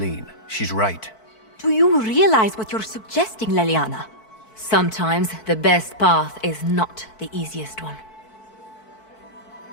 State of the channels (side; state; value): right; late; 4.6 ms